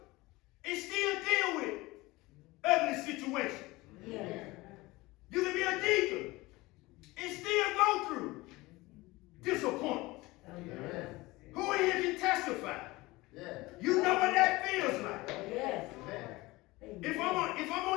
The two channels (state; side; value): quieter; right; 20.9 dB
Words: and still deal with ugly situations. Yes. You can be a deacon and still go through disappointment. Who in here can testify? You know what that feels like. Yes. If I'm